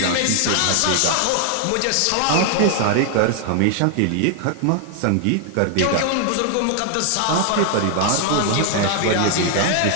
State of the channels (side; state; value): both; different; correlation 0.00